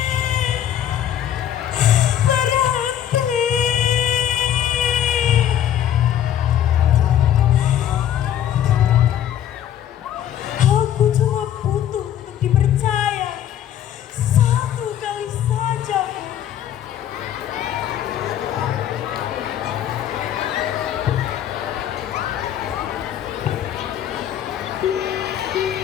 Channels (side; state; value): right; quieter; 10.7 dB